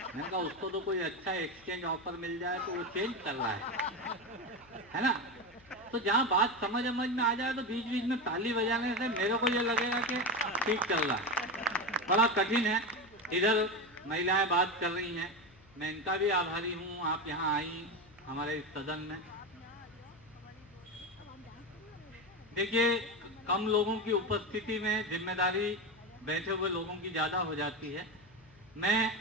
मैंने कहा उसको तो कोई अच्छा एक्सचेंज ऑफर मिल जाए तो वो चेंज कर रहा है ना। तो जहाँ बात समझ में आ जाए तो बीच बीच में ताली बजाने से मेरे को ये लगेगा कि ठीक चल रहा है। बड़ा कठिन है। इधर महिलाएं बात कर रही हैं, मैं इनका भी आभारी हूँ आप यहाँ आई हमारे इस सदन में। देखिए कम लोगों की उपस्थिति में जिम्मेदारी बैठे हुए लोगों की ज्यादा हो जाती है। मैं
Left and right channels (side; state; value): left; noise; hum, 26 dB below the sound